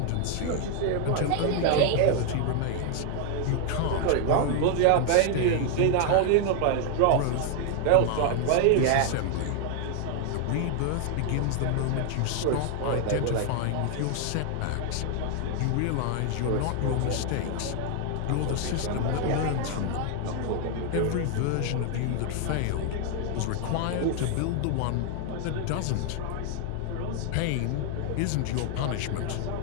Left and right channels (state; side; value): different; both; correlation 0.00